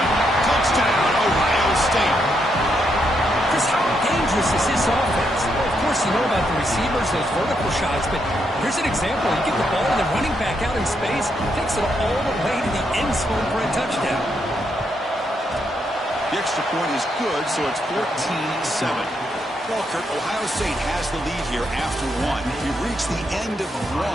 Touchdown, Ohio State. Chris, how dangerous is this offense? Well, of course, you know about the receivers, those vertical shots, but here's an example. You get the ball and the running back out in space, takes it all the way to the end zone for a touchdown. The extra point is good, so it's 14-7. Well, Kirk, Ohio State has the lead here after 1. We've reached the end of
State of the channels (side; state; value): both; normal; correlation 0.79